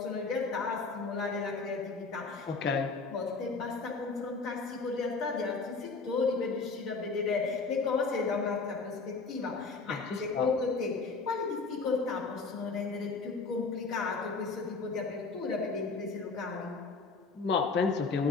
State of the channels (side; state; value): right; quieter; 4.2 dB